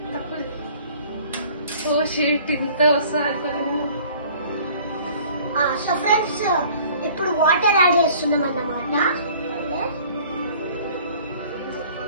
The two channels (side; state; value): both; inverted; correlation -0.51